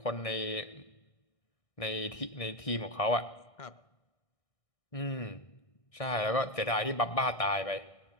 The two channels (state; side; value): late; right; 1.6 ms